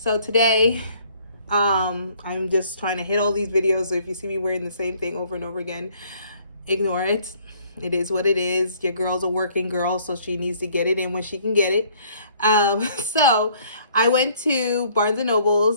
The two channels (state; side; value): inverted; both; correlation -0.60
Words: So today, I'm just trying to hit all these videos. So if you see me wearing the same thing over and over again, ignore it. It is what it is. Your girl's a working girl, so she needs to get it in when she can get it. So I went to Barnes and